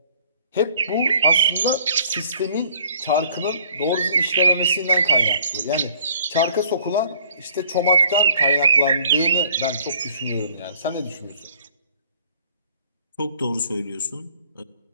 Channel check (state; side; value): inverted; both; correlation -0.56